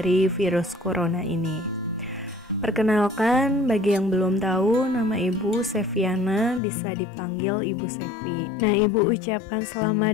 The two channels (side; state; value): right; drops out; at 6.6 s